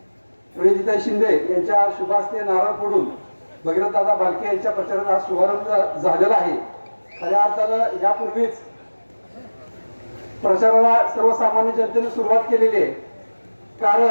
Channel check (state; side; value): inverted; both; correlation -1.00